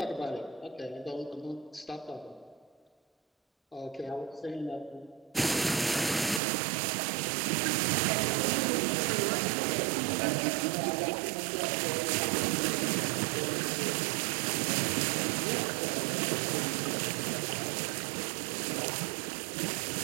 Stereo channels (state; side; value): drops out; left; at 6.4 s